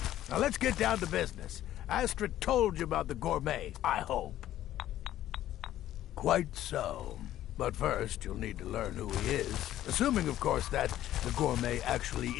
Now let's get down to business. Astrid told you about the Gourmet, I hope. Quite so. But first, you'll need to learn who he is. Assuming, of course, that the gourmet actually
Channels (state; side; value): quieter; right; 13.0 dB